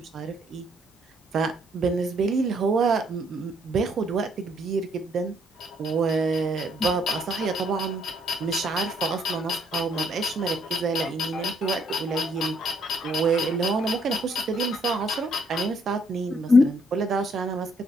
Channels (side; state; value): both; normal; correlation 0.69